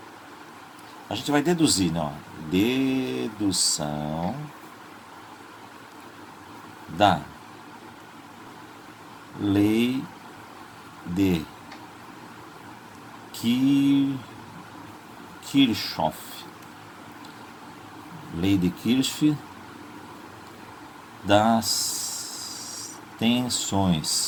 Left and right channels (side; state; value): both; identical; correlation 1.00